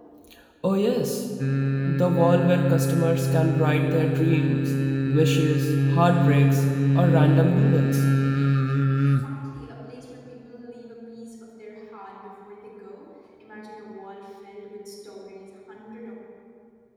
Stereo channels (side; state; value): both; identical; correlation 1.00